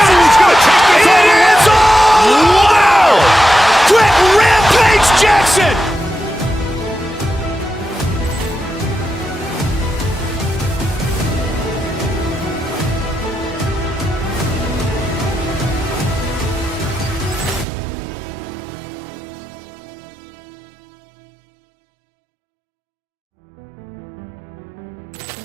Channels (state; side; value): drops out; left; at 17.7 s